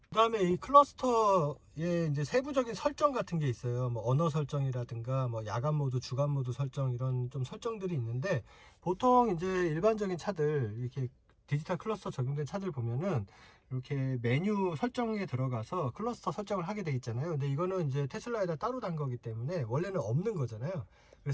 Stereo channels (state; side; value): identical; both; correlation 1.00